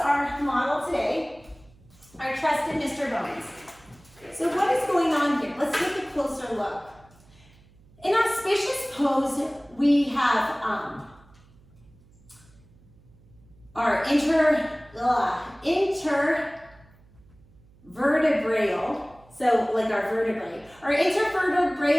model today, our trusted Mr. Bones. So what is going on here? Let's take a closer look. In Auspicious pose, we have our intervertebral, so like our vertebrae. Our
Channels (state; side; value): noise; right; hum, 28 dB below the sound